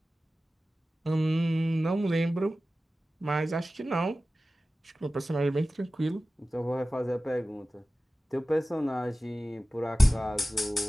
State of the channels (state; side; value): normal; both; correlation 0.96